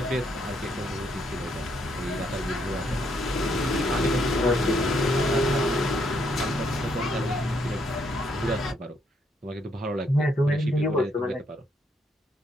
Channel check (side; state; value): both; normal; correlation 0.73